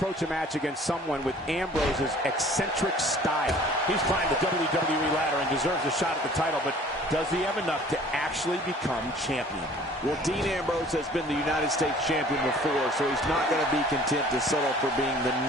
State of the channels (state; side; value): normal; both; correlation 0.51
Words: a match against someone with Ambrose's eccentric style? He's climbed the WWE ladder and deserves a shot at the title, but does he have enough to actually become champion? Well, Dean Ambrose has been the United States champion before, so he's not going to be content to settle for being the